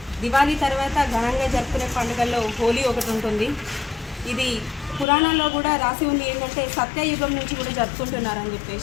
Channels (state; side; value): drops out; right; at 5.1 s